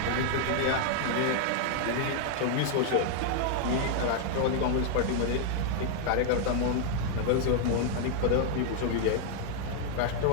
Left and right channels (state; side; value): different; both; correlation 0.00